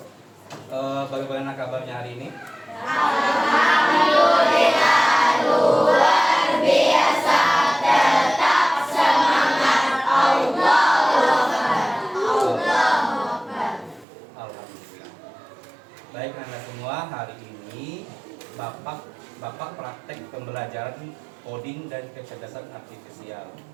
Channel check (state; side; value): drops out; left; at 14.1 s